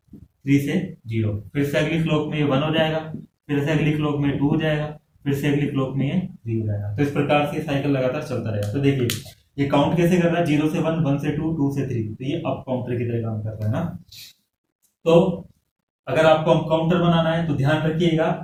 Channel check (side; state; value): both; identical; correlation 1.00